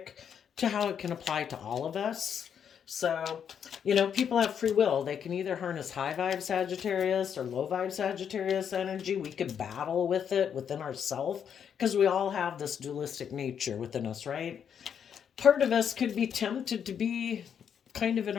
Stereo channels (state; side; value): quieter; right; 8.0 dB